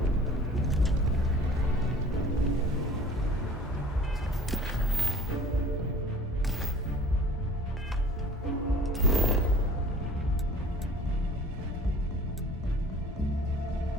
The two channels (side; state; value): both; normal; correlation 0.46